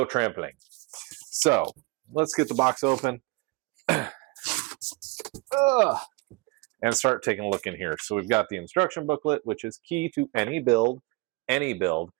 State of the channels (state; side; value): quieter; left; 25.4 dB